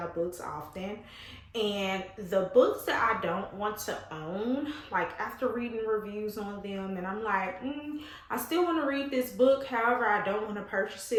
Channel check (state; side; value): identical; both; correlation 1.00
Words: books often. And the books that I don't want to own, like after reading reviews on them and I'm like, I still want to read this book, however I don't want to purchase